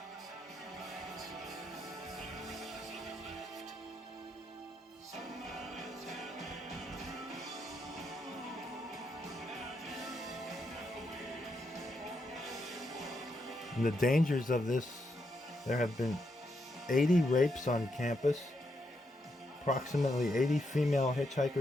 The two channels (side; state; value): both; normal; correlation 0.80